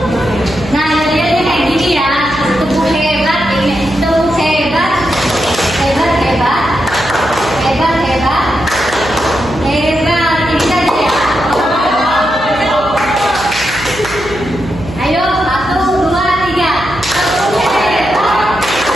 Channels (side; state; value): right; noise; hum, 13 dB below the sound